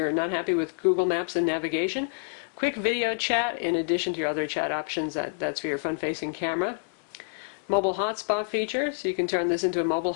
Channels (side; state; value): right; silent; digital silence